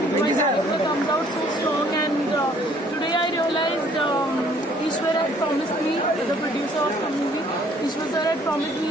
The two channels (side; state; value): both; normal; correlation 0.60